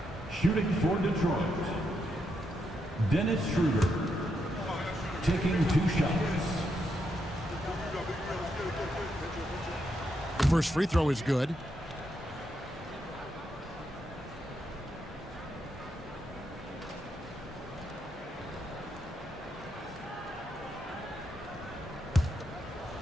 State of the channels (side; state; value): both; normal; correlation 0.81